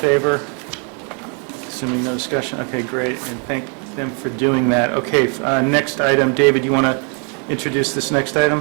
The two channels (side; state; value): left; quieter; 38.3 dB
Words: Assuming no discussion, okay, great, and thank them for doing that. Okay, next item, David, you want to introduce this next